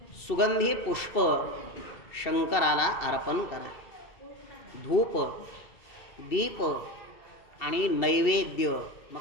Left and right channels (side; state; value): right; late; 2.7 ms